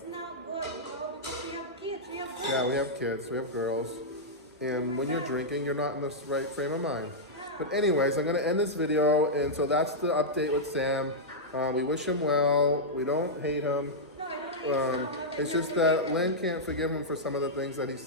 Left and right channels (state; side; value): normal; both; correlation -0.08